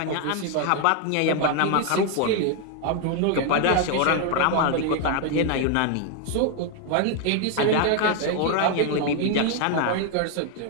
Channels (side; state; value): both; different; correlation 0.00